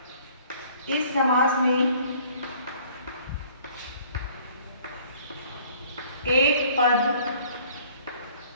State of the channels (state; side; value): inverted; both; correlation -0.55